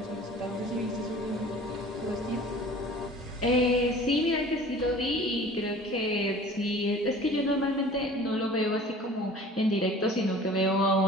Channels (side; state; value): both; normal; correlation 0.45